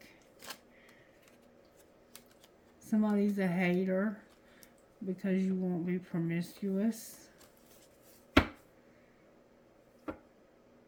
Somebody's a hater because you won't be promiscuous.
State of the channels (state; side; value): identical; both; correlation 1.00